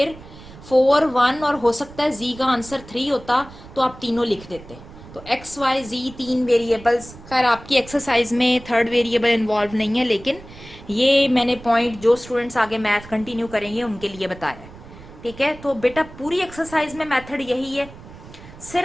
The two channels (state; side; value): noise; right; rumble, 18 dB below the sound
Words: 4, 1 और हो सकता है z का आंसर 3 होता, तो आप तीनों लिख देते। तो x, y, z 3 वेरिएबल्स, खैर आपकी एक्सरसाइज में थर्ड वेरिएबल इन्वॉल्व नहीं है, लेकिन ये मैंने पॉइंट जो स्टूडेंट्स आगे मैथ कंटिन्यू करेंगे उनके लिए बताया। ठीक है, तो बेटा पूरी एक्सरसाइज में मेथड यही है,